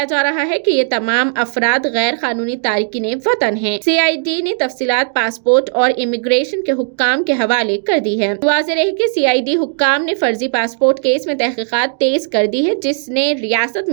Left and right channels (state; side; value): silent; left; digital silence